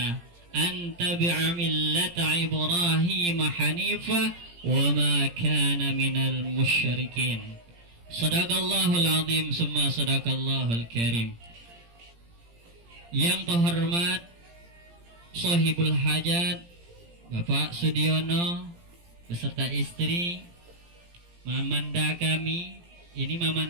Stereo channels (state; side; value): late; left; 17 ms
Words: an tabi'a millata Ibrahim hanifa wa ma kana minal musyrikin. Sadaqallahul azim summa sadaqallahul karim. Yang terhormat Sohibul Hajat Bapak Sudiono beserta istri, mamanda kami, ini